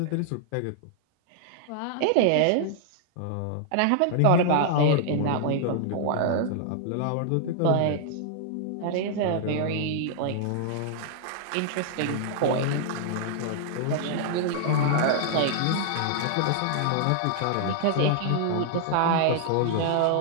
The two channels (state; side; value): different; both; correlation -0.01